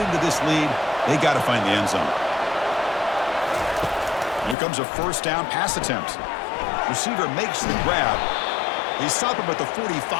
this lead, they got to find the end zone. Here comes a 1st down pass attempt. Receiver makes the grab. They stop him at the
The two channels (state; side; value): drops out; right; at 4.5 s